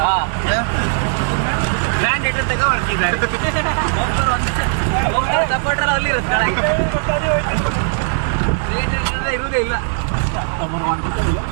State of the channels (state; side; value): silent; left; digital silence